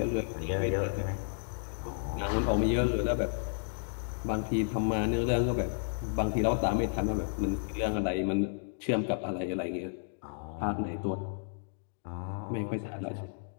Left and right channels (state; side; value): silent; right; digital silence